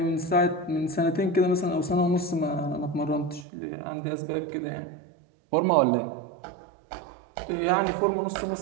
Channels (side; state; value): left; drops out; at 3.5 s